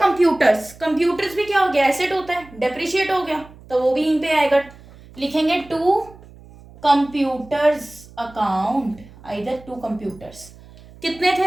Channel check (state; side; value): noise; right; hum, 22 dB below the sound